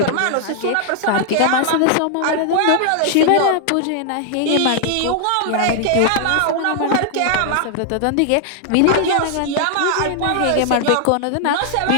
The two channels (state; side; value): different; both; correlation 0.00